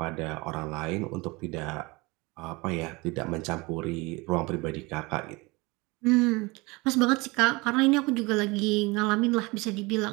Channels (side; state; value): left; quieter; 24.8 dB